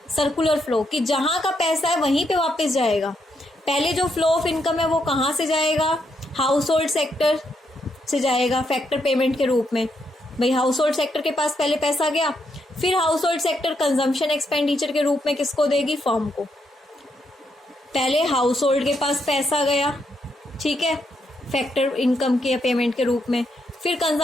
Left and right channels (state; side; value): normal; both; correlation 0.79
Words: सर्कुलर फ्लो, कि जहां का पैसा है वहीं पे वापस जाएगा। पहले जो फ्लो ऑफ इनकम है वो कहाँ से जाएगा? हाउस होल्ड सेक्टर से जाएगा फैक्टर पेमेंट के रूप में। भाई हाउस होल्ड सेक्टर के पास पहले पैसा गया, फिर house hold sector consumption expenditure के रूप में किसको देगी? फर्म को। पहले हाउस होल्ड के पास पैसा गया, ठीक है, फैक्टर इनकम के पेमेंट के रूप में, फिर